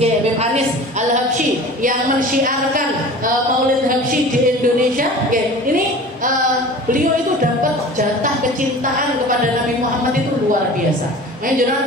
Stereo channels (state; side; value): normal; both; correlation 0.39